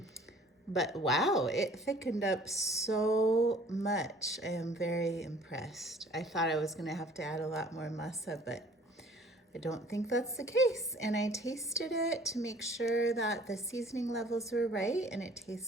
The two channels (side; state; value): both; normal; correlation 0.53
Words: But wow, it thickened up so much. I am very impressed. I thought I was gonna have to add a lot more masa, but I don't think that's the case. And I tasted it to make sure that the seasoning levels were right, and it